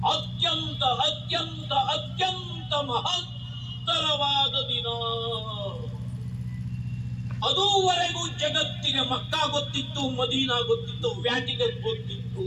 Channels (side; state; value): both; identical; correlation 1.00